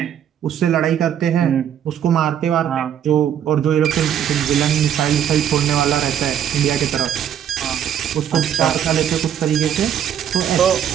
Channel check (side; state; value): left; quieter; 9.5 dB